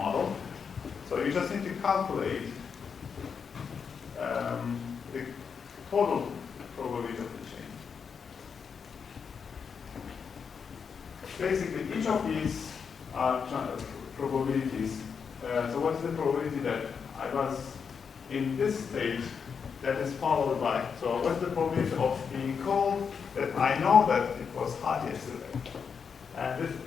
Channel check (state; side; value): quieter; right; 6.3 dB